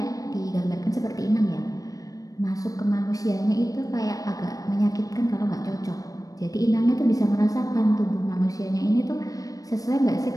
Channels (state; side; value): late; right; 0.17 ms